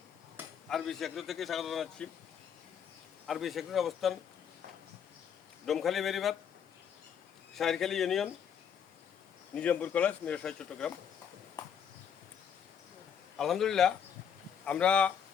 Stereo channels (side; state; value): right; quieter; 7.9 dB